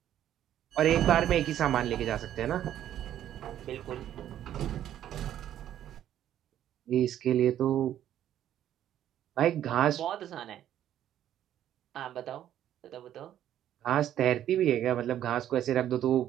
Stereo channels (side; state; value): left; quieter; 11.3 dB